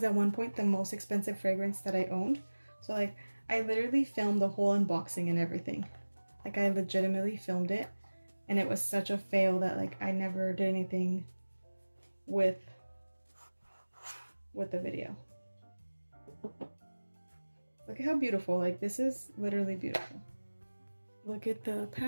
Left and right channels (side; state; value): both; inverted; correlation -1.00